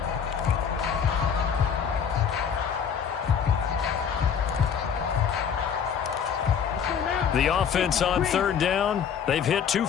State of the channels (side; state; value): right; quieter; 7.4 dB